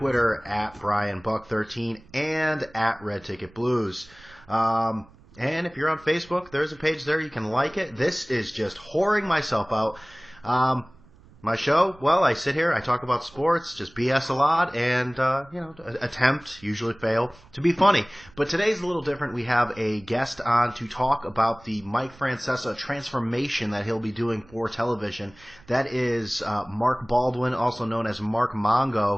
at BrianBuck13 and at Red Ticket Blues. And if you're on Facebook, there's a page there. You can like it. This is just whoring myself out. My show, well, I sit here, I talk about sports, just BS a lot, and, attempt, usually fail, to be funny. But today's a little different. We have a guest on to talk about the Mike Francesa transformation that he'll be doing for television. That is Mark Baldwin, also known as Mark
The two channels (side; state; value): right; noise; rumble, 25 dB below the sound